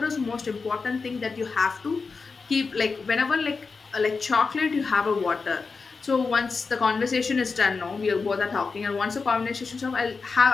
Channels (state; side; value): quieter; right; 4.6 dB